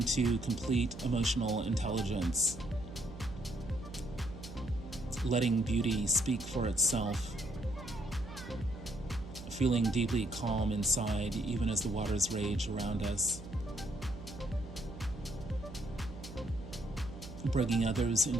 complete emotional intelligence, letting beauty speak for itself, feeling deeply calm inside even as the waters rage around us, bringing others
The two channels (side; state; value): right; noise; hum, 13 dB below the sound